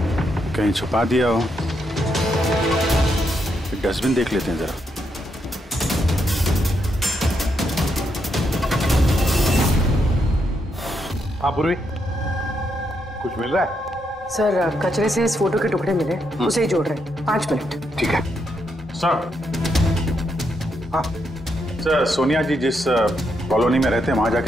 कहीं छुपा दिया हो। डस्टबिन देख लेते हैं जरा। हाँ पूर्वी, कुछ मिल रहा है? सर कचरे से इस फोटो के टुकड़े मिले, उसे ही जोड़ रहे हैं। 5 मिनट। ठीक है सर। हाँ सर, सोनिया जी जिस कॉलोनी में रहते हैं वहां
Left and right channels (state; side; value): normal; both; correlation 0.79